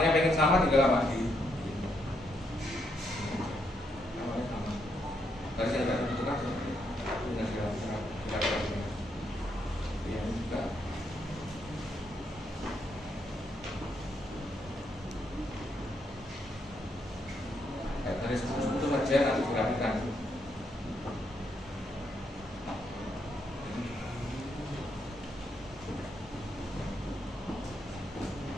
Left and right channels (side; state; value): both; normal; correlation 0.77